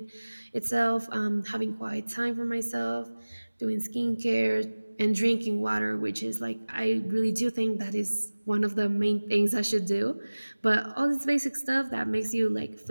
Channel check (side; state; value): both; inverted; correlation -1.00